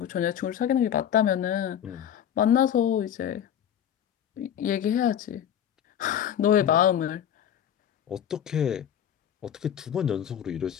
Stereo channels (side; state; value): right; quieter; 9.7 dB